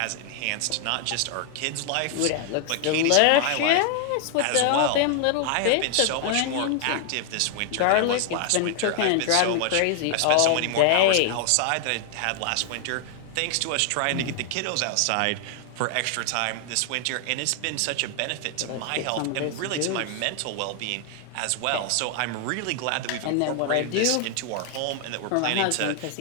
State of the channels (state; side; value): different; both; correlation 0.00